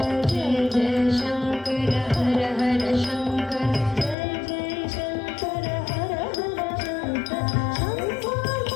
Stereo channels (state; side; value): drops out; right; at 4.2 s